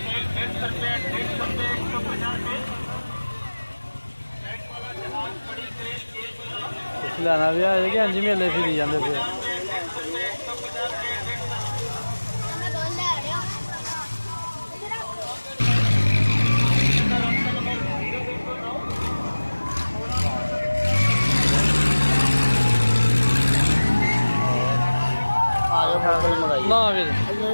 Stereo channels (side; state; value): both; inverted; correlation -1.00